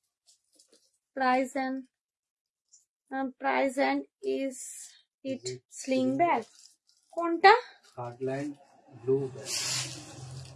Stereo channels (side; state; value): both; identical; correlation 1.00